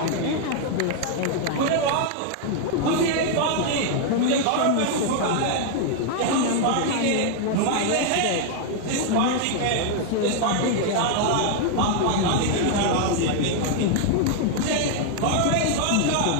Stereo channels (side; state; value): both; different; correlation 0.00